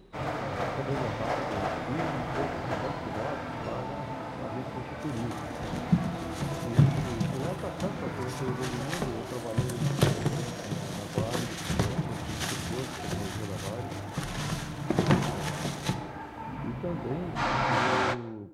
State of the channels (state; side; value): identical; both; correlation 1.00